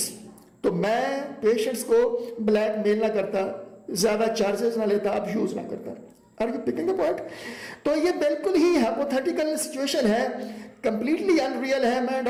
तो मैं पेशेंट्स को ब्लैकमेल ना करता, ज्यादा चार्जेस ना लेता, अब्यूज ना करता। Are you picking the point? तो ये बिल्कुल ही हाइपोथेटिकल सिचुएशन है, कंप्लीटली अनरियल है, मैं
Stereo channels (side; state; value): both; identical; correlation 1.00